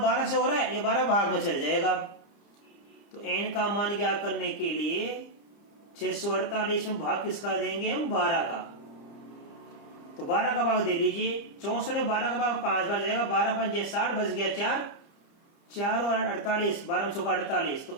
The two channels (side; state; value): right; late; 30 ms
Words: से हो रहा है, ये 12 भाग में चल जाएगा। तो n का मान क्या करने के लिए 648 में भाग किसका देंगे हम, 12 का। तो 12 का भाग दे लीजिए, 64 में 12 का भाग 5 बार जाएगा, 12 5 60 बच गया 4, 4 और 48, 12 में 48,